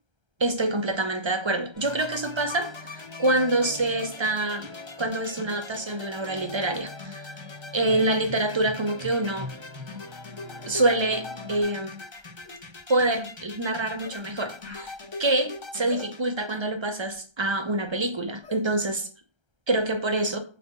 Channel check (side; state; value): left; late; 1.3 ms